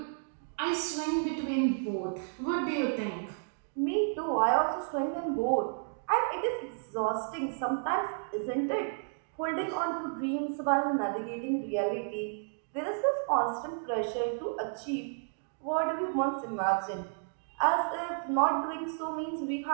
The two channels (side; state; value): left; silent; digital silence